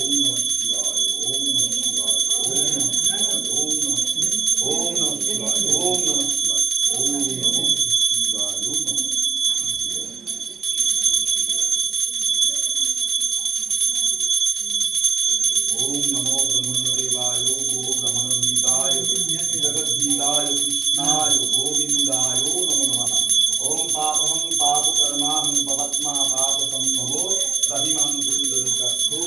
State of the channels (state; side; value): quieter; left; 6.0 dB